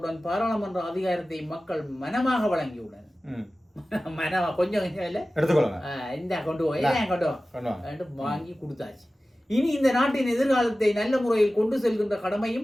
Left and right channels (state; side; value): normal; both; correlation 0.96